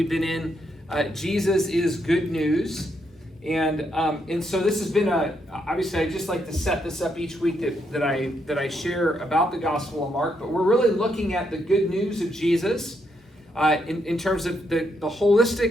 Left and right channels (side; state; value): both; normal; correlation 0.78